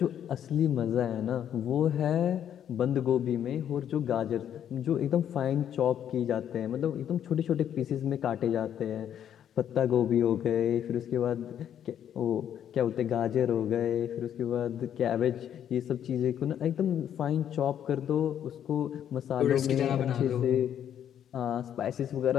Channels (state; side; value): quieter; right; 9.7 dB